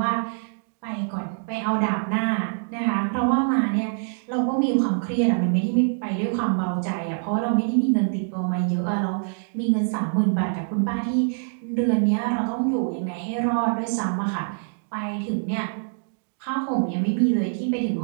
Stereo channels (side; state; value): left; silent; digital silence